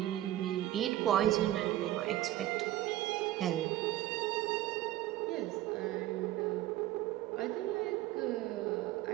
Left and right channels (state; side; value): quieter; left; 14.4 dB